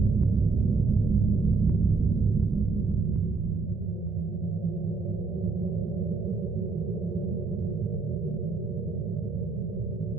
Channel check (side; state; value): left; quieter; 4.2 dB